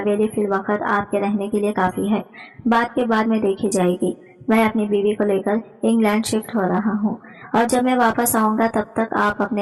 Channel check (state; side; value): identical; both; correlation 1.00